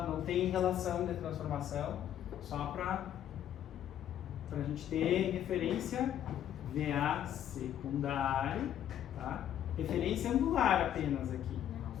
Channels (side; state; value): right; quieter; 10.7 dB